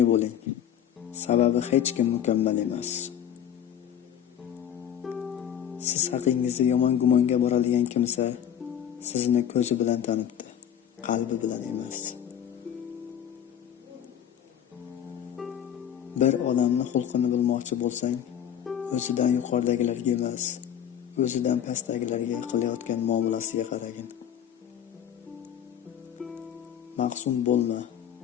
bo'ling. Sababi hech kim mukammal emas. Siz haqingizda yomon gumonga boradigan kimsa sizni ko'zi bilan tanibdi, qalbi bilan emas. Bir odamni xulqini bilmoqchi bo'lsang, o'zidan yuqoridagilarga emas, o'zidan pastdagilarga qilayotgan muomalasiga qaragin. Mahzun bo'lma.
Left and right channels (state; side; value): quieter; right; 9.6 dB